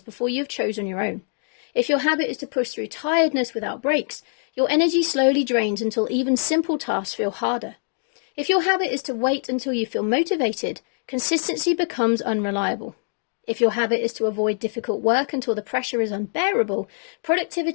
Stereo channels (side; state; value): right; silent; 63 dB below the other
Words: before you've chosen your own. If your habit is to push through tiredness without breaks, your energy slowly drains until even simple tasks feel harder. If your habit is to wait until you feel motivated, consistency becomes unreliable. If your habit is to avoid difficult work until the pressure is unbearable,